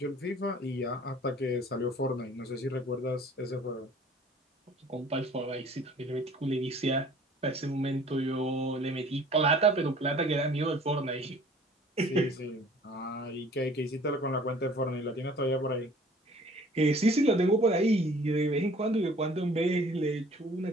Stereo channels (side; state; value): both; normal; correlation 0.52